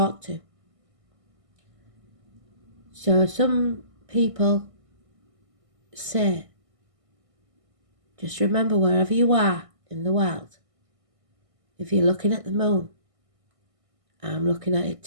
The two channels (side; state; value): left; late; 1.6 ms